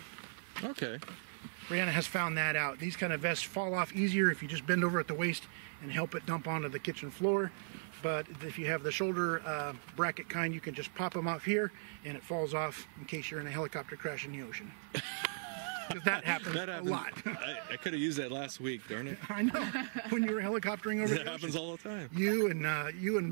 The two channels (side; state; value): left; silent; 53 dB below the other